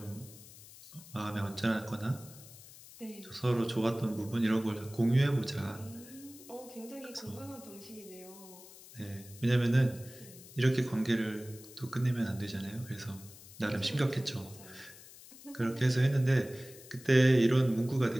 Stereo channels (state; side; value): noise; left; hiss, 19 dB below the sound